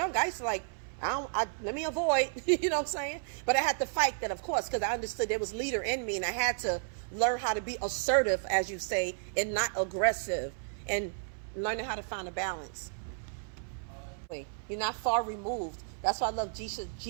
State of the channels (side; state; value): left; silent; 56 dB below the other